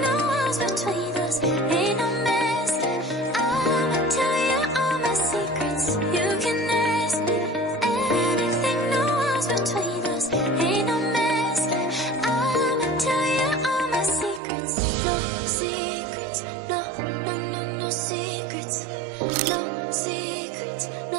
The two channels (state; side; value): drops out; left; at 14.4 s